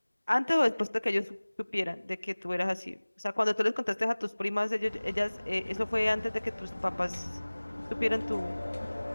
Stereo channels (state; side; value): inverted; both; correlation -1.00